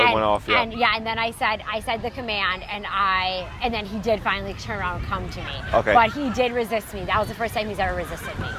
off. Yeah. And then I said the command, and then he did finally turn around and come to me. Okay. But he did resist me. That was the first time he's ever resisted me.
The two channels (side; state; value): both; identical; correlation 1.00